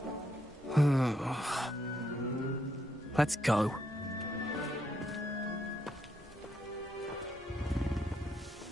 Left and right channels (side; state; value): both; normal; correlation 0.77